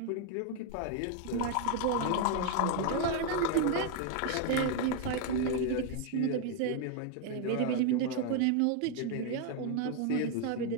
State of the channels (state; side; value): different; both; correlation 0.01